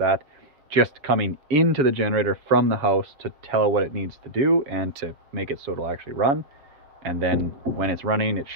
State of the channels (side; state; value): left; late; 6.9 ms